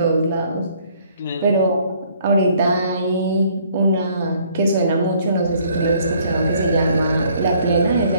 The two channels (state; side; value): inverted; both; correlation -0.62